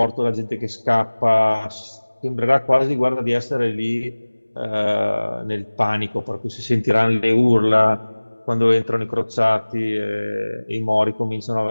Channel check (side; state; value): both; inverted; correlation -1.00